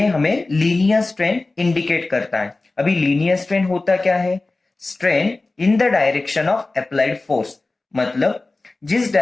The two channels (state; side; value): quieter; right; 3.3 dB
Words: हमें linear strain indicate करता है। अभी linear strain होता क्या है? Strain in the direction of applied force, मतलब जिस